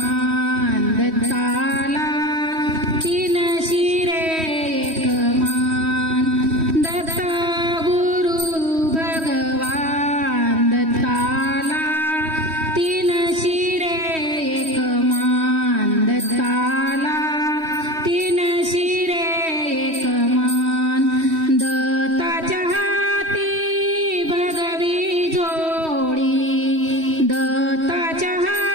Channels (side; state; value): left; late; 3.1 ms